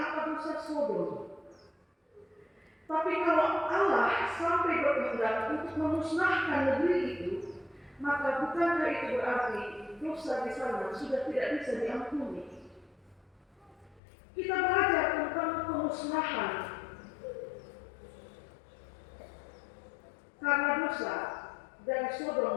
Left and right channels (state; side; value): drops out; right; at 14.0 s